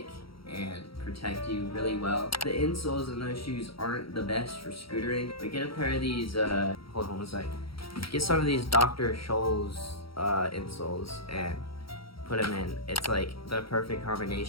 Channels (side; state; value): right; late; 0.75 ms